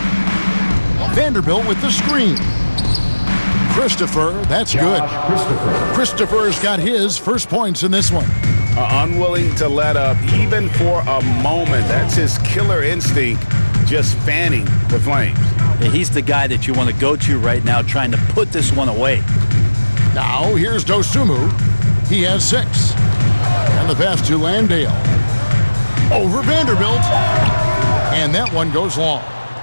Vanderbilt with the screen. Christopher, that's good. Christopher's got his first points in this one. Unwilling to let up even for a moment. That's his killer instinct, just fanning the flames. Yeah, he's the guy that you want to go to right now trying to put this one away. Now here's Dosunmu. He has 6. And the pass to Landale. Over Vanderbilt. And that one goes long.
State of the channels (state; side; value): inverted; both; correlation -1.00